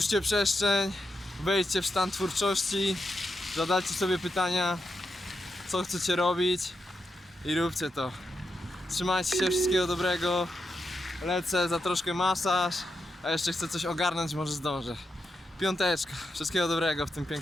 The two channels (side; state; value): both; normal; correlation 0.86